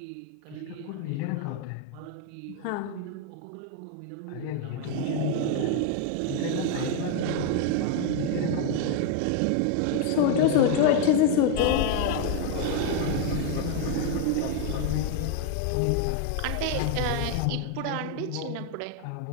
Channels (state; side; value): different; both; correlation 0.01